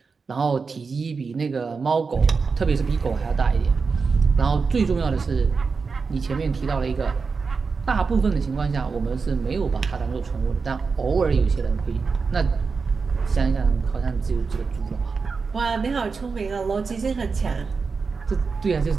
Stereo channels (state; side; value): quieter; left; 4.9 dB